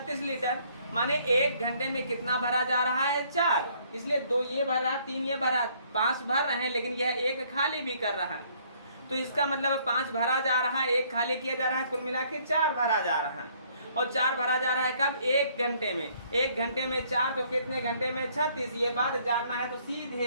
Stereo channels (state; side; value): inverted; both; correlation -0.64